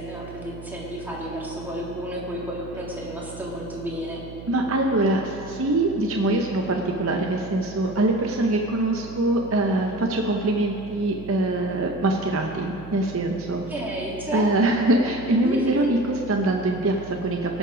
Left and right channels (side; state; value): right; noise; hum, 14 dB below the sound